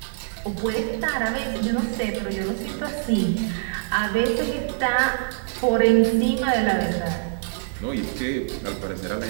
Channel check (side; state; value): left; silent; digital silence